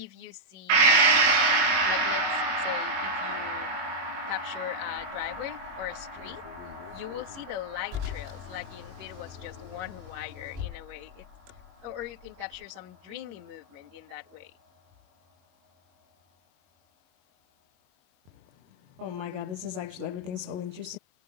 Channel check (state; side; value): late; left; 23 ms